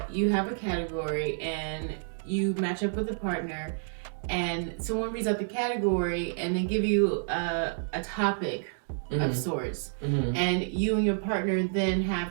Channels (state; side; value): silent; left; 58 dB below the other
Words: you have a category and you match up with a partner and someone reads out the category and they give you a topic of sorts. And you and your partner then